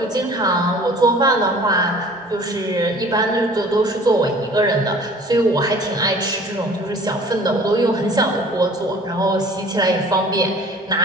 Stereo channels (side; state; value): both; normal; correlation 0.48